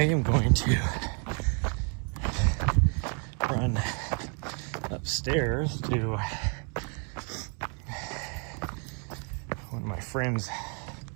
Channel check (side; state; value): left; quieter; 38.4 dB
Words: going to run upstairs to one of my friends'